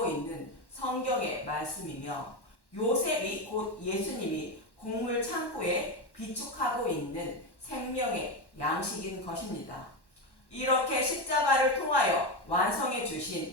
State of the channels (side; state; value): right; late; 1.1 ms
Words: 있는 성경의 말씀이며 요셉이 곧 예수님이 곡물 창고에 비축하고 있는 생명의 양식인 것입니다. 이렇게 십자가를 통하여 완성해